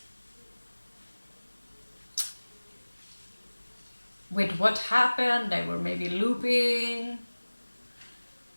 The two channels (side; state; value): both; inverted; correlation -1.00